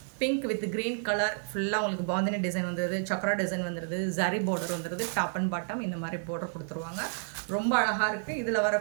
பிங்க் வித் க்ரீன் கலர் ஃபுல்லாக உங்களுக்கு பாந்தினி டிசைன் வந்துடுது, சக்கரா டிசைன் வந்துடுது, ஜரி பார்டர் வந்துடுது, டாப் அண்ட் பாட்டம் இந்த மாதிரி பார்டர் கொடுத்துருவாங்க. ரொம்ப அழகாக இருக்குது. இதில்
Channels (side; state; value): left; silent; 58 dB below the other